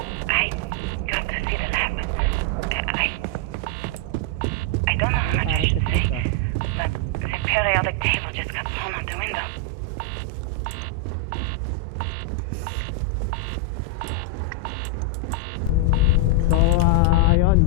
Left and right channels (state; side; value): different; both; correlation 0.00